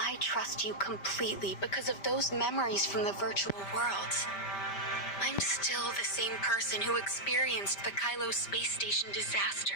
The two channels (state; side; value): late; right; 5.1 ms